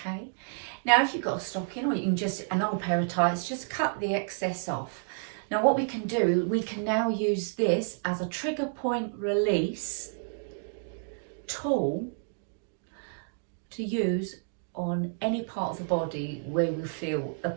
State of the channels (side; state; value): left; silent; digital silence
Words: Now, if you've got a stocking, or you can just, an old pair of tights, just cut the excess off. Now, what we can do, we can now use this as a trigger point release tool to use on any part of the body where we feel the